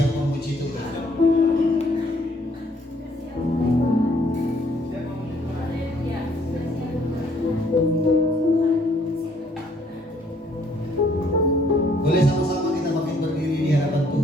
memuji Tuhan. Boleh sama-sama kita makin berdiri di hadapan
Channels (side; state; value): both; normal; correlation 0.65